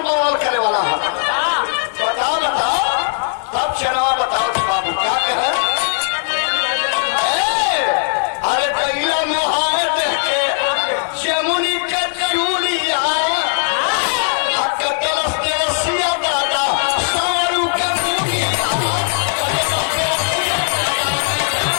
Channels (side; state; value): right; silent; digital silence